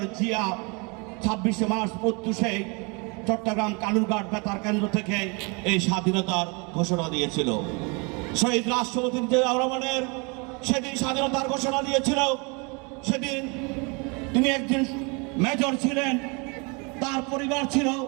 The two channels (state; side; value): quieter; left; 30.9 dB